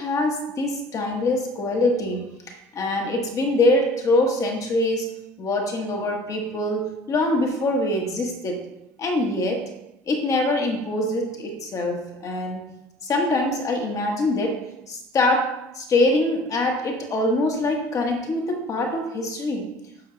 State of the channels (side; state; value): both; normal; correlation 0.48